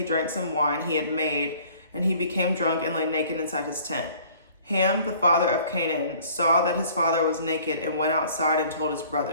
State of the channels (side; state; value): both; inverted; correlation -0.53